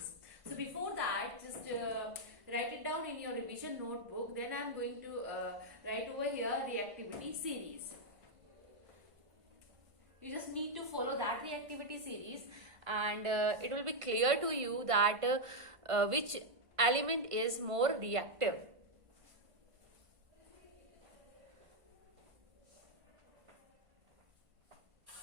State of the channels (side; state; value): left; late; 1.5 ms